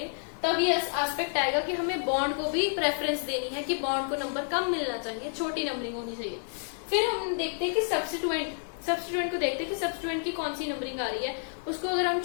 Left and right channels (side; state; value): right; silent; digital silence